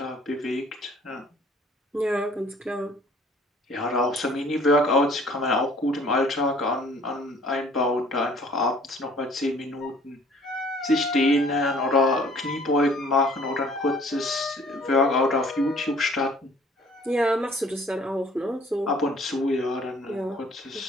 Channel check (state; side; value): normal; both; correlation 0.55